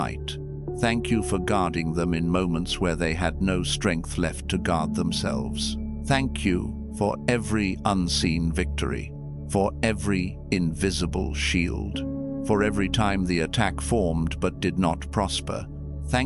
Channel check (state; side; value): identical; both; correlation 1.00